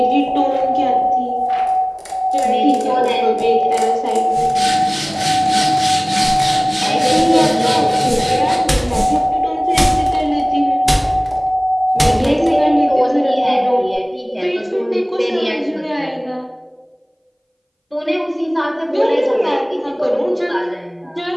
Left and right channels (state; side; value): identical; both; correlation 1.00